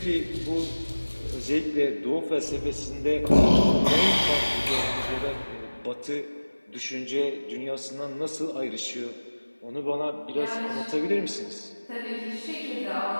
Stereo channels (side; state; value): both; inverted; correlation -1.00